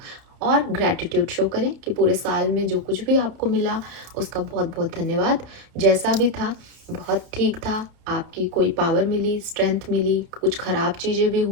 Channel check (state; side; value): late; left; 31 ms